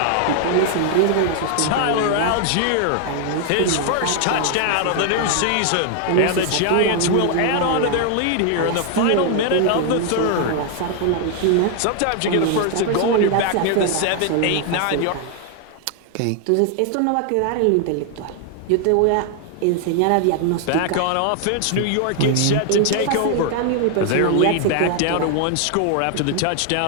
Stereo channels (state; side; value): different; both; correlation 0.00